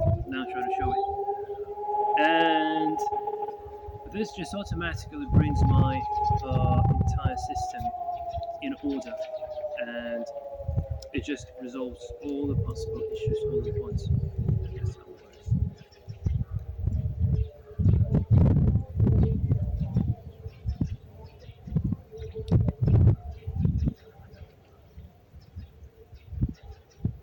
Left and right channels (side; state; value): both; identical; correlation 1.00